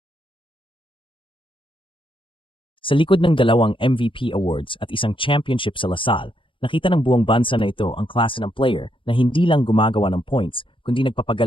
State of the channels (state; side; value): late; right; 0.25 ms